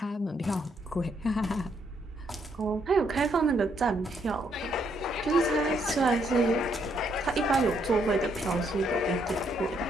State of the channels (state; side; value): normal; both; correlation 0.73